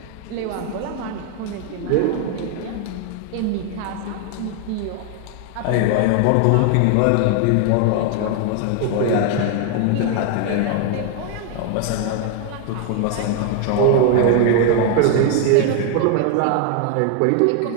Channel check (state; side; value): different; both; correlation 0.00